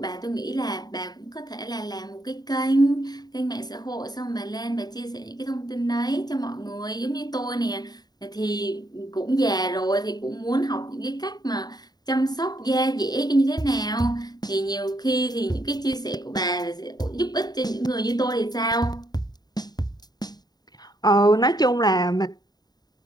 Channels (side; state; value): right; late; 0.20 ms